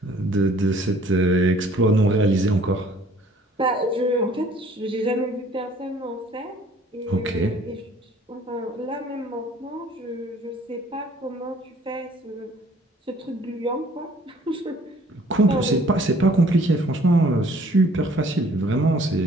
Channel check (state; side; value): normal; both; correlation 0.56